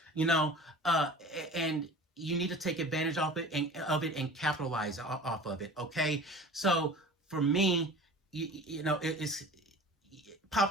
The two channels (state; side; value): normal; both; correlation 0.41